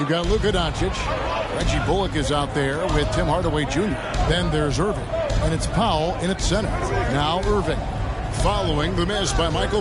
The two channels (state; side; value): identical; both; correlation 1.00